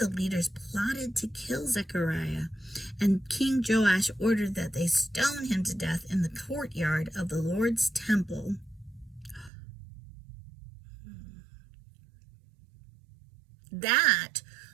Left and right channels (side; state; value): left; drops out; at 9.5 s